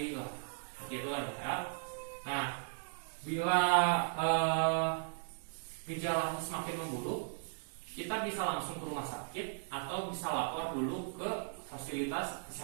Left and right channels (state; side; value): silent; left; digital silence